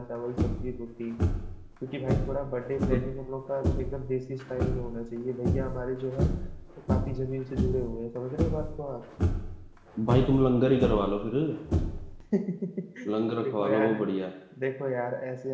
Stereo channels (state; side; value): identical; both; correlation 1.00